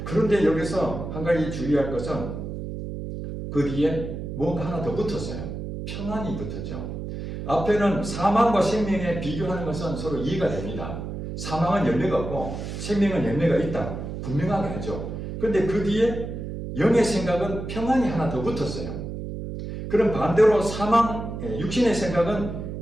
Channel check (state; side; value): noise; right; hum, 7 dB below the sound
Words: 그런데 여기서 한 가지 주의할 것은 그 뒤에 뭔가 하나 더 붙었어요. 평안이 붙었죠. 앞에는 사망과 생명에 비교하는 것은 서로 이해가 됩니다. 사망은 열매가 없고 생명은 열매가 있다. 분명하게 하죠. 그런데 그 뒤에 영의 생각은 평안이 하나 더 붙었어요. 그럼 반대로 육신의 생각은